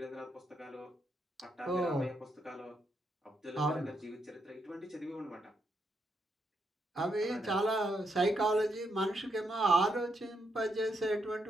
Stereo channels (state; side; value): normal; both; correlation 0.79